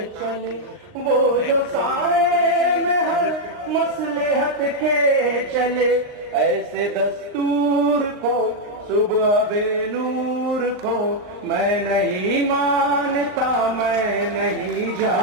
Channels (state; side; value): late; left; 39 ms